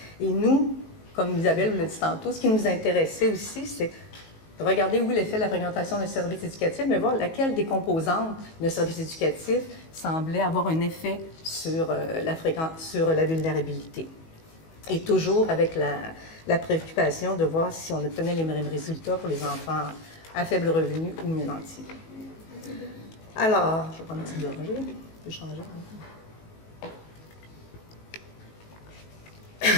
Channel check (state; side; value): late; right; 19 ms